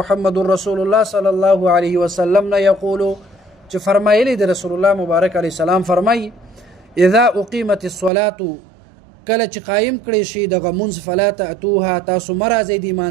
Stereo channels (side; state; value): left; drops out; at 8.1 s